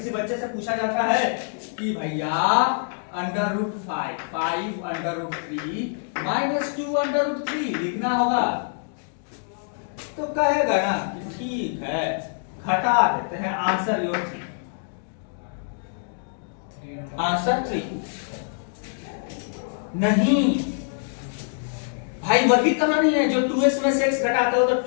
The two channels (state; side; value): silent; right; digital silence